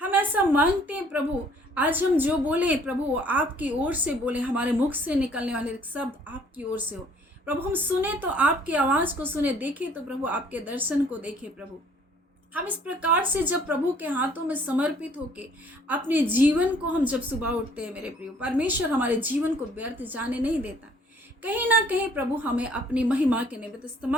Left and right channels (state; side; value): normal; both; correlation 0.59